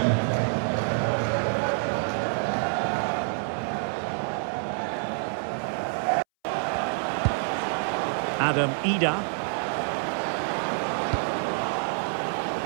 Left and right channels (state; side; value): silent; left; 60 dB below the other